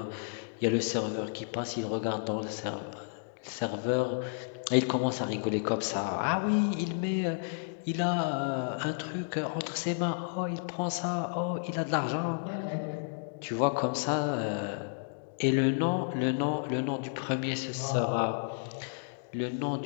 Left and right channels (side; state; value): right; silent; digital silence